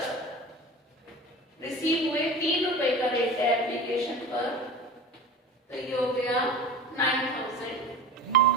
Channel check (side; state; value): both; normal; correlation 0.34